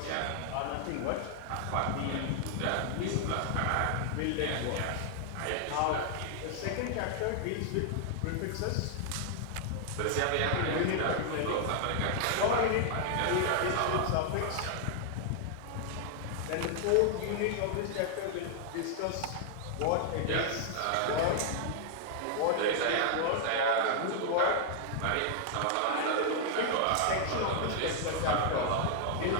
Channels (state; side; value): different; both; correlation -0.01